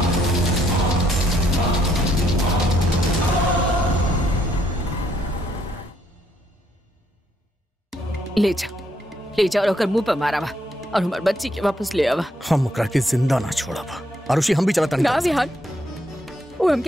ले जा और ओकर मुंह पे मारावा और हमार बच्ची के वापस ले आवा। हम ओकरा के जिंदा ना छोड़ब। आरुषि, हम भी चलता नहीं। ना विहान, वो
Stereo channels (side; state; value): both; normal; correlation 0.72